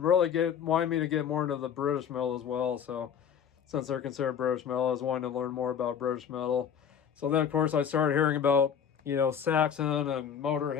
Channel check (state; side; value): quieter; right; 8.0 dB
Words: really wanted me to get more into the British metal as well. So since they're considered British metal, I was wanting to learn more about British metal. So then of course I started hearing about Saxon and